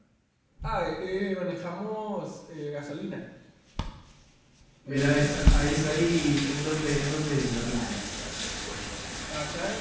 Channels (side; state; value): both; identical; correlation 1.00